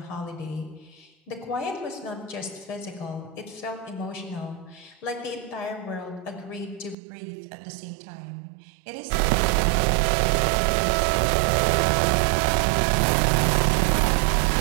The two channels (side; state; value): left; drops out; at 7.0 s